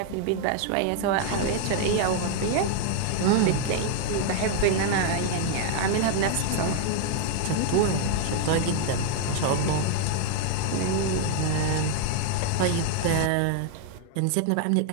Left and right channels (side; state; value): both; different; correlation 0.00